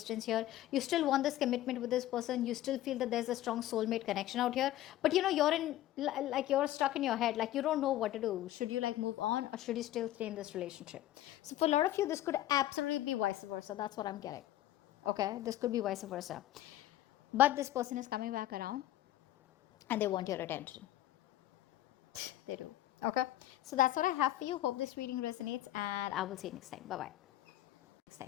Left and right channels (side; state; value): right; quieter; 13.9 dB